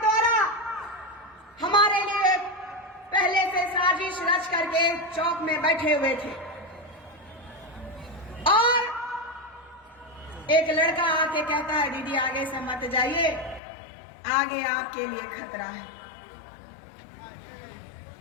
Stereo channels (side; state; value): right; drops out; at 13.6 s